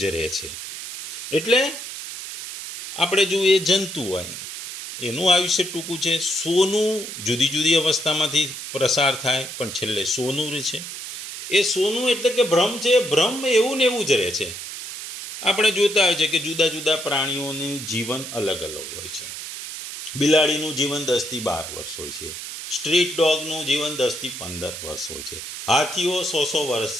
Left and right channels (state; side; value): noise; right; hiss, 9 dB below the sound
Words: રહે છે. એટલે આપણે જો એ જંતુ હોય એનું આયુષ્ય ટૂંકું છે. સોનું જુદી જુદી અવસ્થામાંથી પ્રસાર થાય પણ છેલ્લે સોનું રહે છે. એ સોનું એટલે કે ભ્રમ છે. ભ્રમ એવું ને એવું જ રહે છે. આપણે જોતા હોય છે કે જુદા જુદા પ્રાણીઓનું જીવન અલગ અલગ હોય છે. બિલાડીનું જીવન 10 થી 12 વર્ષ હોય છે. સ્ટ્રીટ ડોગનું જીવન 10 થી 15 વર્ષ હોય છે. હાથીઓ 100 વર્ષ